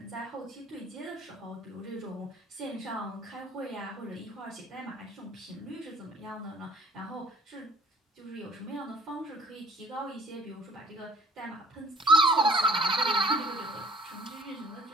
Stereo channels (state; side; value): normal; both; correlation 0.51